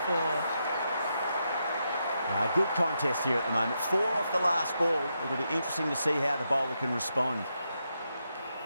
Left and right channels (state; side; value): inverted; both; correlation -0.83